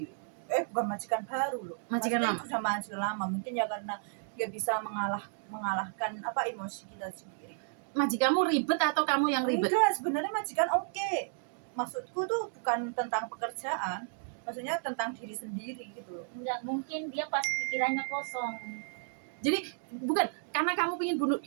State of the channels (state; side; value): silent; left; digital silence